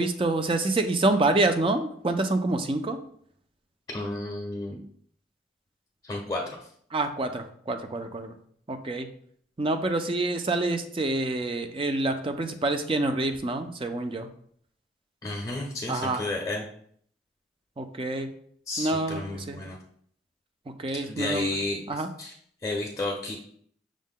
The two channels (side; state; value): both; normal; correlation 0.51